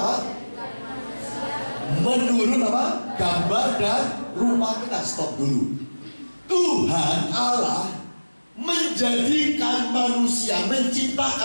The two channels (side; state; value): both; inverted; correlation -1.00